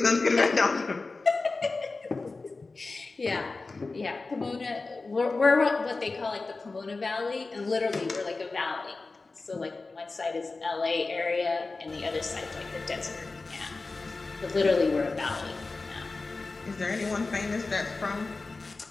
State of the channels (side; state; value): right; quieter; 3.7 dB